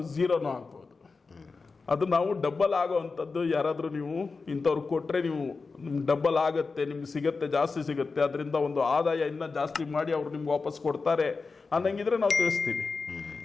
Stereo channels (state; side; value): quieter; right; 4.3 dB